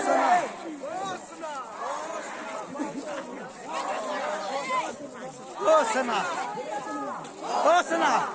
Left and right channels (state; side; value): identical; both; correlation 1.00